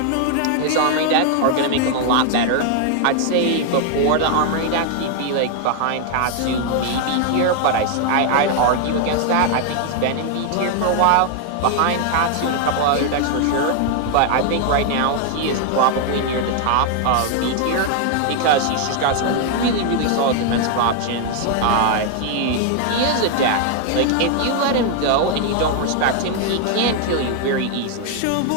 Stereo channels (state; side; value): different; both; correlation 0.00